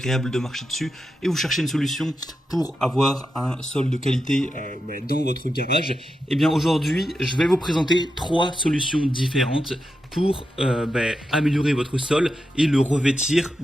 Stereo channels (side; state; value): both; normal; correlation 0.88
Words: de marcher dessus et vous cherchez une solution pour avoir un sol de qualité dans votre garage. Et bien aujourd'hui, je vais vous présenter 3 solutions différentes pour améliorer votre sol et le revêtir